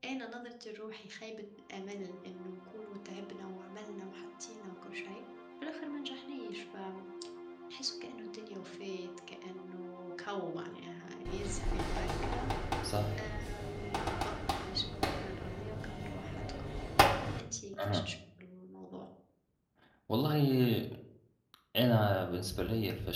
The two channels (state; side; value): identical; both; correlation 1.00